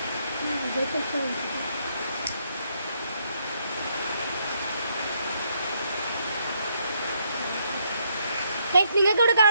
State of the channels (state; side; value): inverted; both; correlation -0.74